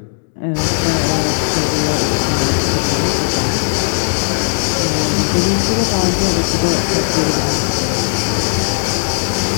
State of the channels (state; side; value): silent; right; 69 dB below the other